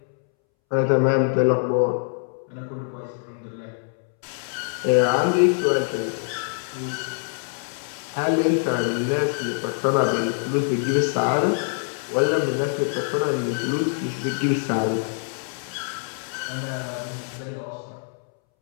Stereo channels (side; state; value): right; silent; 62 dB below the other